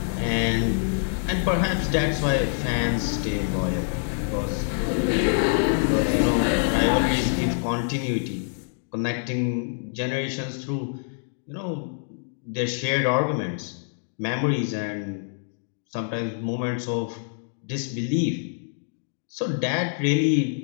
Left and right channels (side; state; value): right; silent; digital silence